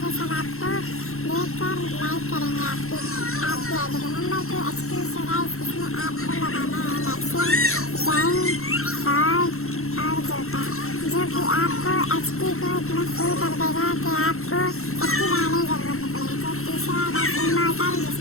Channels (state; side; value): late; right; 0.62 ms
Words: कि सब आपको देखकर लाइक करेंगे आपकी आईडी को। Number 2 HP. सो गाइस इसमें आपको लगाना है मैक्सिम, जैन, फॉल्ट और जोटा, जो कि आपको एचपी को इतना फुल कर देगा कि आपको एचपी बढ़ाने की जरूरत नहीं पड़ेगी। तो तीसरा है इमॉर्टल,